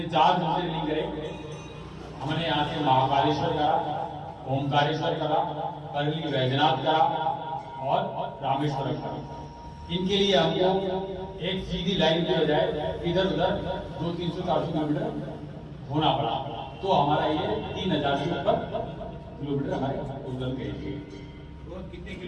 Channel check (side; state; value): both; identical; correlation 1.00